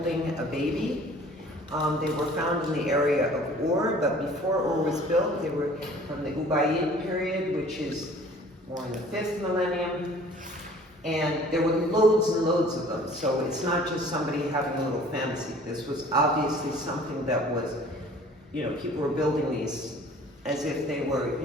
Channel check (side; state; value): both; normal; correlation 0.50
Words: a baby. They were found in the area of Ur, but before Ur was built, they were from the Ubaid period, which is more in the 5th millennium. And there were loads and loads of them. So it's not just somebody having a little fantasy. This was obviously something that was, people were building these as if they were,